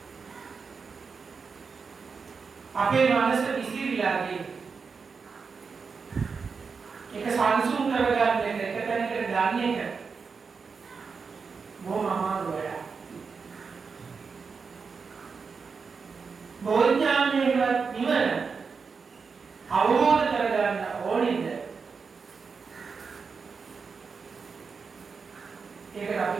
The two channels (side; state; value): left; quieter; 5.3 dB